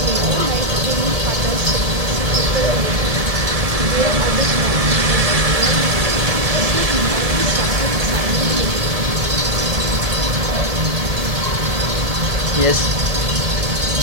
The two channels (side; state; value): left; late; 1.7 ms